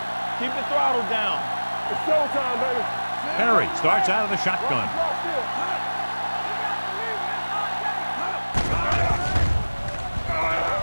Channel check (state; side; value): inverted; both; correlation -1.00